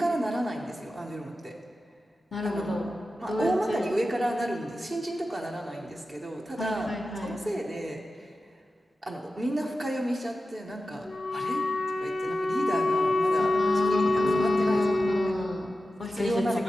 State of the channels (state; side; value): normal; both; correlation 0.93